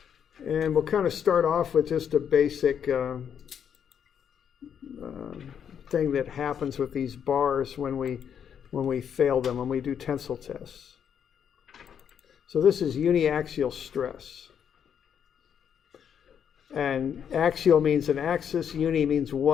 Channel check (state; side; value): quieter; right; 8.2 dB